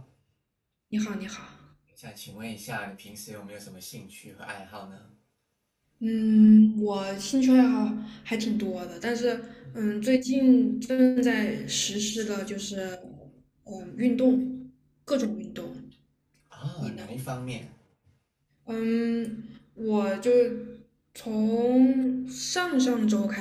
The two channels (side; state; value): both; identical; correlation 1.00